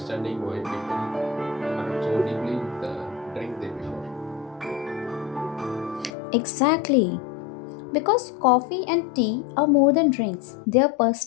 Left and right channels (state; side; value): drops out; right; at 6.1 s